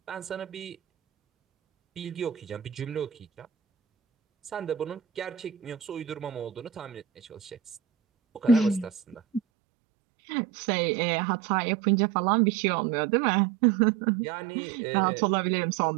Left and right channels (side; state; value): left; drops out; at 9.4 s